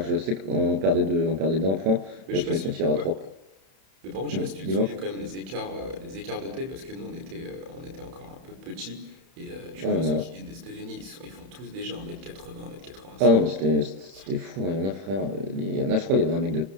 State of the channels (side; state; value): left; late; 31 ms